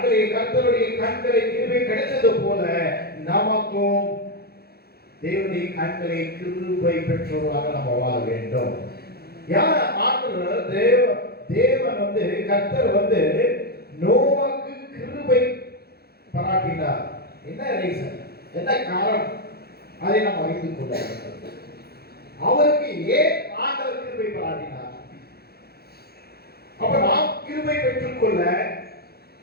கர்த்தருடைய கண்களில் கிருபை கிடைத்தது போல நமக்கும் தேவனுடைய கண்களில் கிருபை பெற்றவர்களாக நாம் வாழ வேண்டும். யார் ஆண்டவர் தேவன் கர்த்தர் நோவாக்கு கிருபை பாராட்டினார். என்ன ரீசன், என்ன காரணம், அதை நாம் அறிந்து கொள்ள வேண்டும். அவருக்கு ஏன் ஆண்டவர் கிருபை பாராட்டினார்? அப்ப நாம் கிருபை பெற்றுக்கொள்ள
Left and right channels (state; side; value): late; right; 0.46 ms